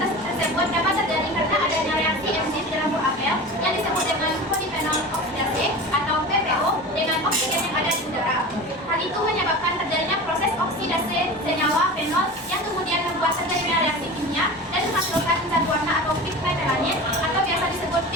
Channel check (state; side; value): normal; both; correlation 0.33